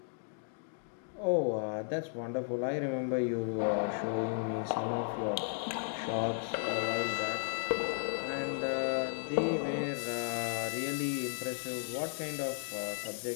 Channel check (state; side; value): silent; right; digital silence